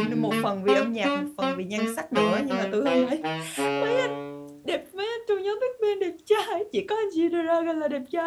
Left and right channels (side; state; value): both; identical; correlation 1.00